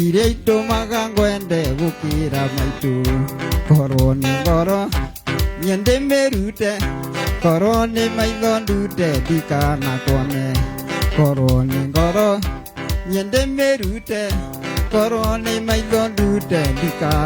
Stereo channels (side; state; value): both; identical; correlation 1.00